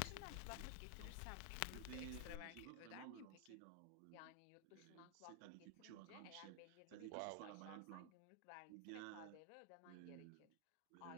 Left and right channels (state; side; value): different; both; correlation 0.00